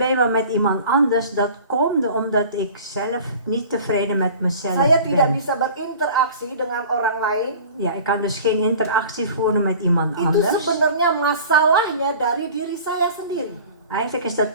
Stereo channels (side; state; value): both; inverted; correlation -0.43